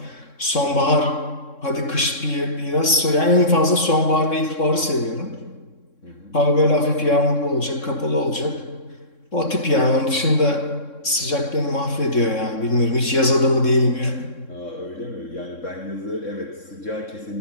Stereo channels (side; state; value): right; late; 3.6 ms